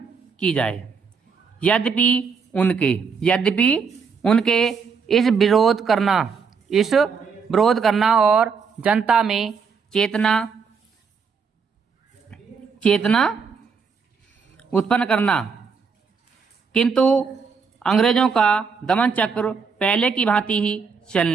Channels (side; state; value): left; quieter; 5.6 dB